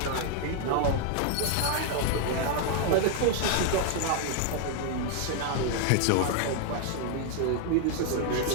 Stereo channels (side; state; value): both; different; correlation 0.00